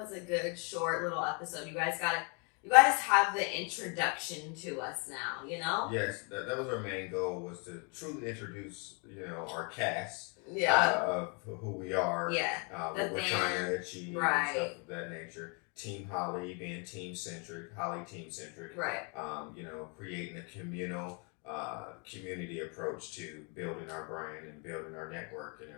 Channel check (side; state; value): right; quieter; 35.3 dB